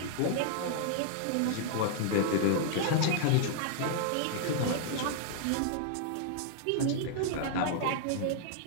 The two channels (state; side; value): different; both; correlation -0.01